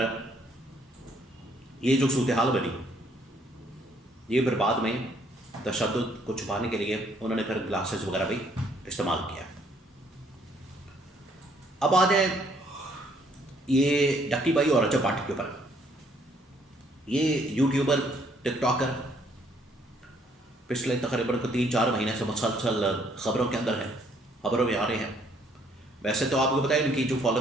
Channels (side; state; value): both; normal; correlation 0.66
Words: یہ جو صورتحال بنی، یہ پھر بعد میں تشدد کو چھپانے کے لیے انہوں نے پھر گلاسز وغیرہ بھی استعمال کیا۔ اب آ جائیں یہ ڈکی بائی اور رجب بٹ کے اوپر۔ یہ یوٹیوبر، ٹک ٹاکر پچھلے تقریباً 3-4 مہینے سے مسلسل خبروں کے اندر ہے، خبروں میں آ رہے ہیں۔ ویسے تو آپ کو پتہ ہے ان کی جو